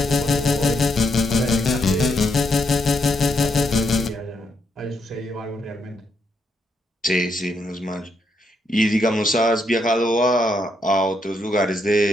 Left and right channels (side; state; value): both; normal; correlation 0.78